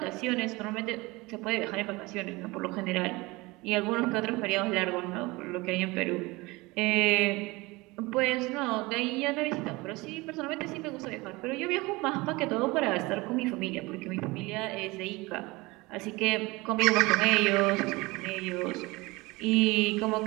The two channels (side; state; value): left; quieter; 22.8 dB